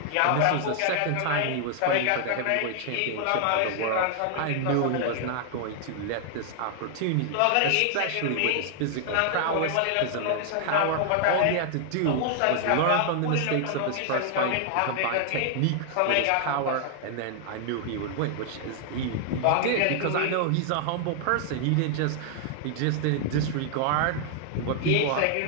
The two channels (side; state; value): both; different; correlation 0.00